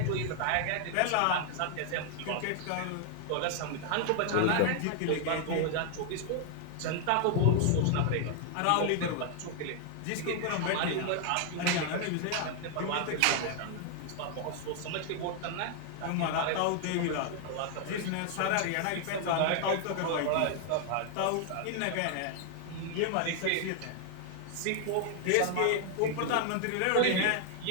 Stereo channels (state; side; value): different; both; correlation 0.00